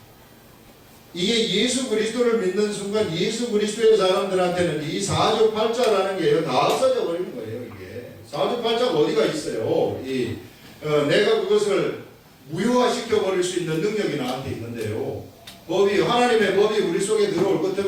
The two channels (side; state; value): both; identical; correlation 1.00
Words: 이게 예수 그리스도를 믿는 순간 예수 그리스도의 사람들한테는 이 사주팔자라는 게 다 없어져 버리는 거예요. 이게 사주팔자가 어디가 있어요. 내가 그것을 무효화시켜 버릴 수 있는 능력이 나한테 있는데요. 하나님의 법이 우리 속에 들어올 것